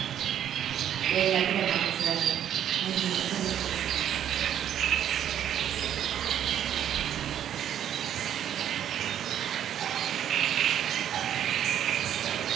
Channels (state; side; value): quieter; left; 10.2 dB